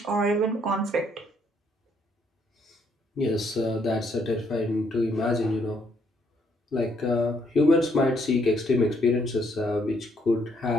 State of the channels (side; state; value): both; normal; correlation 0.71